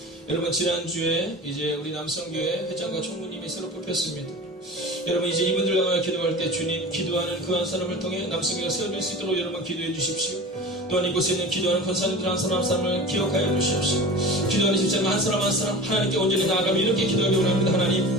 여러분, 지난주에 이제 우리 남성교회 회장과 총무님이 새로 뽑혔습니다. 여러분, 이제 이분들 향하여 기도할 때 주님 기도하는 그 한 사람을 통해 남성교회가 세워질 수 있도록 여러분 기도해 주십시오. 또한 이곳에 있는 기도하는 권사님들 한 사람 한 사람을 기억하여 주십시오. 기도하는 집사님 한 사람 한 사람 하나님께 온전히 나아가며 이렇게 기도하기 원합니다.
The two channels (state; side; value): normal; both; correlation 0.35